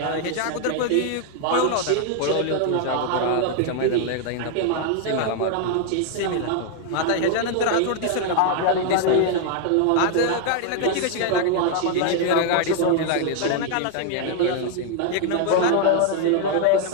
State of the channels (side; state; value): both; different; correlation 0.00